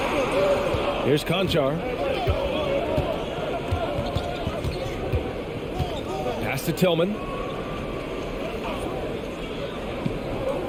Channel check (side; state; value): both; identical; correlation 1.00